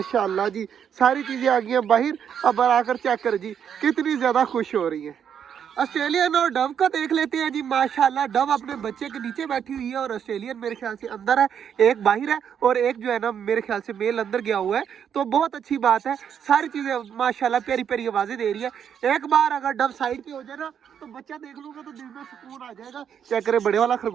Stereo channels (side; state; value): left; quieter; 8.3 dB